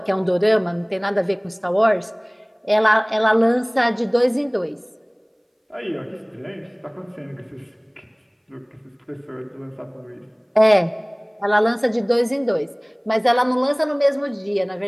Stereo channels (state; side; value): identical; both; correlation 1.00